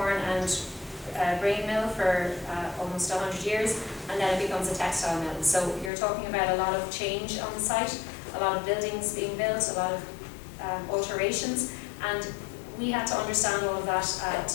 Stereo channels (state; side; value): drops out; right; at 5.9 s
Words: and grain mill for almost 100 years, and then it becomes a textile mill. So you're talking about a lot of change on the site, a lot of buildings being built, a lot of alterations, and we had to understand all of that